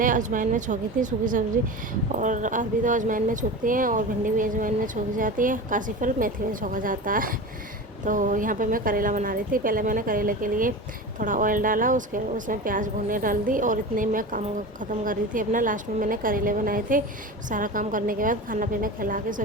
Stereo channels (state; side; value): normal; both; correlation 0.29